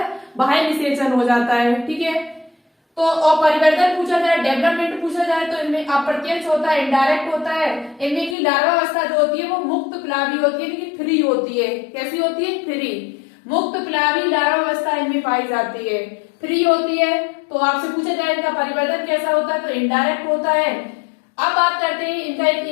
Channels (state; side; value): drops out; right; at 8.3 s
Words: बाह्य निषेचन हो जाता है। ठीक है, तो और परिवर्तन पूछा जाए, डेवलपमेंट पूछा जाए, तो इनमें अप्रत्यक्ष होता है, इनडायरेक्ट होता है। इनमें की लार्वावस्था जो होती है वो मुक्त प्लावी होती है, इनकी फ्री होती है। कैसी होती है, फ्री। मुक्त प्लावी लार्वावस्था इनमें पाई जाती है, फ्री होती है। तो आपसे पूछा जाए इनका परिवर्तन कैसा होता है, तो इनडायरेक्ट होता है। अब बात करते हैं इनका,